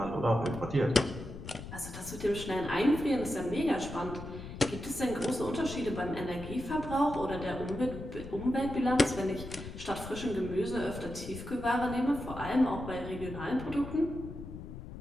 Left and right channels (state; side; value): noise; left; rumble, 11 dB below the sound